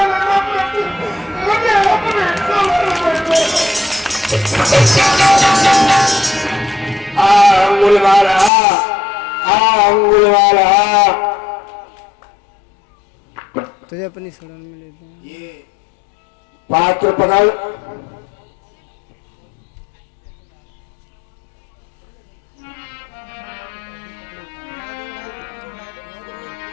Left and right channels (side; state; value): right; drops out; at 8.5 s